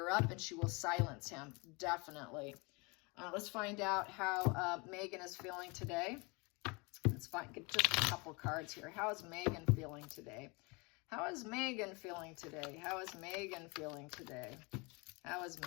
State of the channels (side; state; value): right; quieter; 28.5 dB